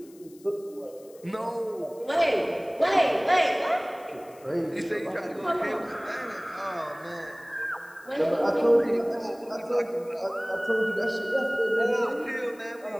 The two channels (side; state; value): left; noise; hiss, 26 dB below the sound